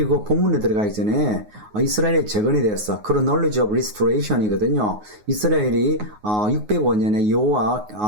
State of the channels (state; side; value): late; left; 9.5 ms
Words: 본문에 들어가기 전에 이스라엘의 재건에 대해서 chronology of restoration이거든요. 이스라엘이 605년에 여호와